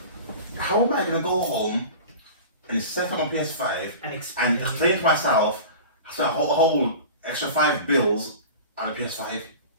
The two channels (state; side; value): inverted; both; correlation -0.36